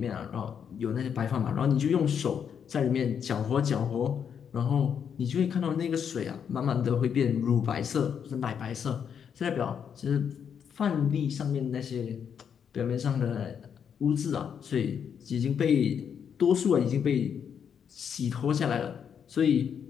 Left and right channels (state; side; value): quieter; right; 7.7 dB